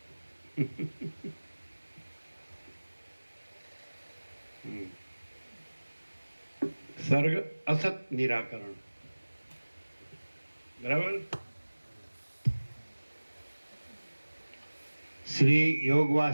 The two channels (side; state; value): both; inverted; correlation -1.00